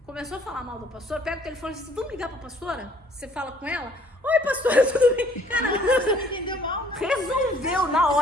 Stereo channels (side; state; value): both; normal; correlation 0.59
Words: Começou a falar mal da pastora, pega o telefone e diz, vamos ligar pra pastora? Você fala com ela, oi pastora, tudo bem? Caramba, Entendeu mal, né? resolveu na